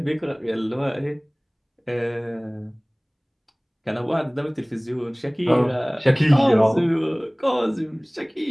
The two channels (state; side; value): identical; both; correlation 1.00